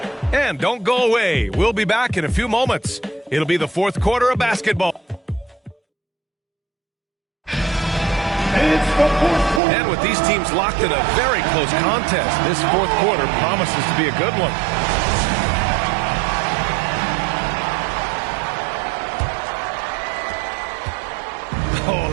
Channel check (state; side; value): drops out; left; at 9.6 s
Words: And don't go away. We'll be back in a few moments. It'll be the fourth quarter of basketball. It's the fourth And with these teams locked in a very close contest, this fourth quarter promises to be a good one. Oh,